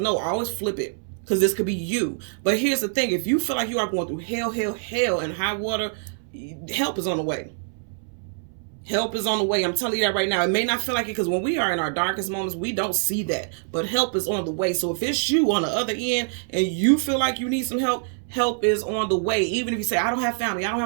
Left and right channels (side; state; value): left; silent; 62 dB below the other